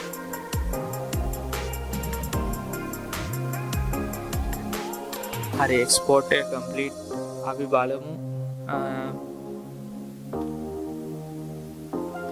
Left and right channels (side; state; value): both; identical; correlation 1.00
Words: හරි export එක complete. අපි බලමු